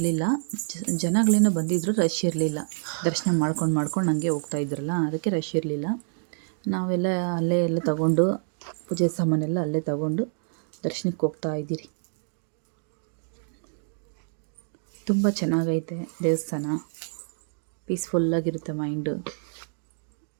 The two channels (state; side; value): silent; left; digital silence